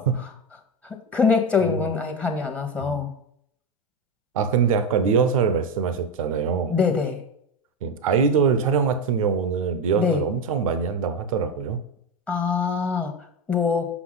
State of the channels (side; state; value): both; normal; correlation 0.14